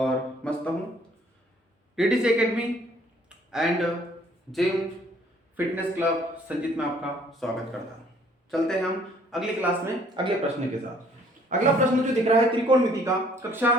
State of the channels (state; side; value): normal; both; correlation 0.60